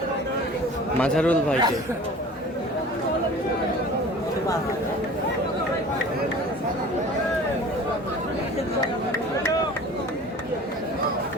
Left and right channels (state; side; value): normal; both; correlation 0.42